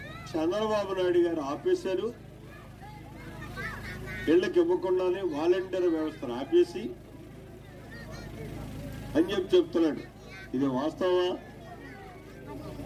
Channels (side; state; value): both; identical; correlation 1.00